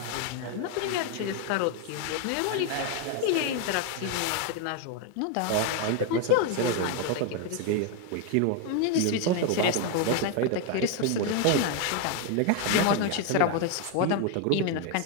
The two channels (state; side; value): different; both; correlation 0.01